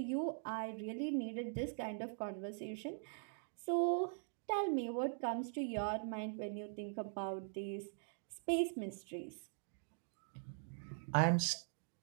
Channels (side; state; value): left; silent; digital silence